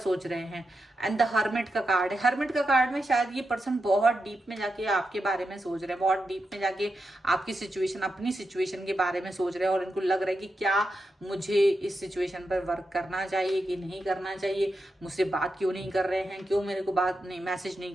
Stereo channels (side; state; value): both; normal; correlation 0.87